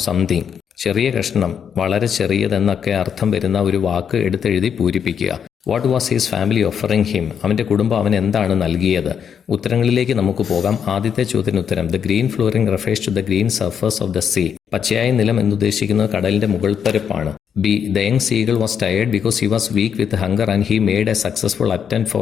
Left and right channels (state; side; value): quieter; right; 7.7 dB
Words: something. ചെറിയ കഷ്ണം, വളരെ ചെറിയതെന്നൊക്കെ അർത്ഥം വരുന്ന ഒരു വാക്ക് എടുത്തെഴുതി പൂരിപ്പിക്കുക. What was his family offering him? അവൻ്റെ കുടുംബം അവൻ എന്താണ് നൽകിയത്? ഉത്തരങ്ങളിലേക്ക് നമുക്ക് പോകാം. ആദ്യത്തെ ചോദ്യത്തിന് ഉത്തരം. The green flooring refers to the green surface of the sea. പച്ചയായ നിലം എന്നുദ്ദേശിക്കുന്നത് കടലിന്റെ മുകൾപ്പരപ്പാണ്. B. The young seagull was tired because he was weak with hunger and he made a successful attempt